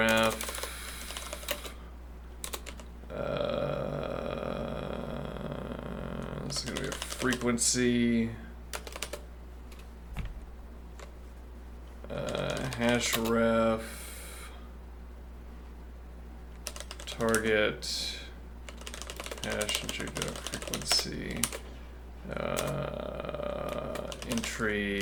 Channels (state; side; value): identical; both; correlation 1.00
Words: this is going to be a frequency hash ref target hash entry to frequency,